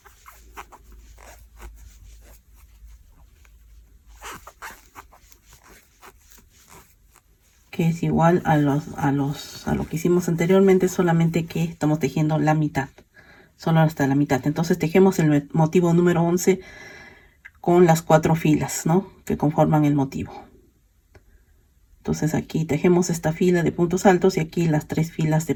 Que es igual a lo que hicimos anteriormente, solamente que estamos tejiendo la mitad. Solo hasta la mitad. Entonces tejemos el motivo número 11 con las 4 filas, ¿no?, que conforman el motivo. Entonces aquí tejemos esta fila de puntos altos y aquí las 3 filas de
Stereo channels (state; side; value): identical; both; correlation 1.00